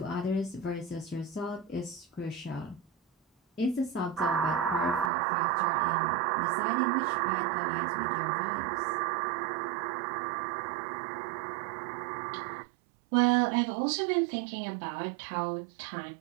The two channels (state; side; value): drops out; left; at 5.1 s